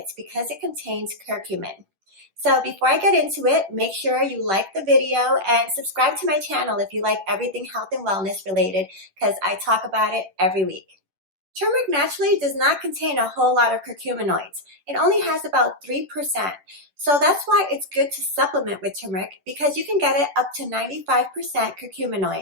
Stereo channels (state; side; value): late; left; 10 ms